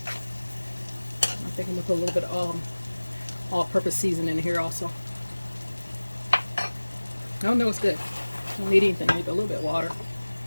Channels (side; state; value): both; inverted; correlation -1.00